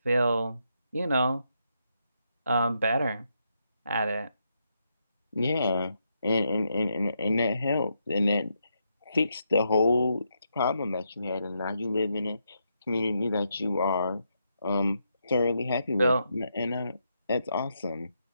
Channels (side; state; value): both; inverted; correlation -0.80